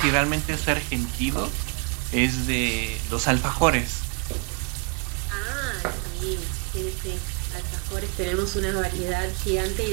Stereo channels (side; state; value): left; quieter; 32.8 dB